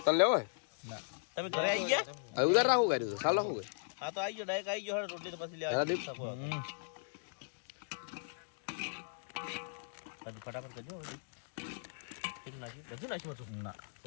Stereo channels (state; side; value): silent; right; digital silence